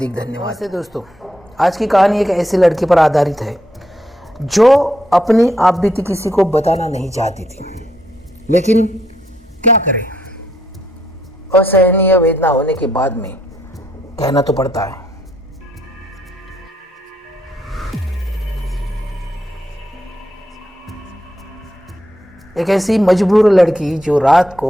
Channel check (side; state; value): both; normal; correlation 0.75